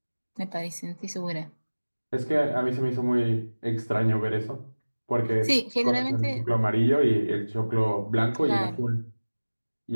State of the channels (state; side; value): inverted; both; correlation -1.00